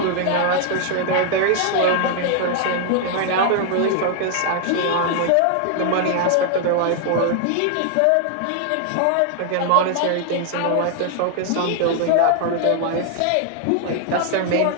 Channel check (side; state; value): both; different; correlation 0.00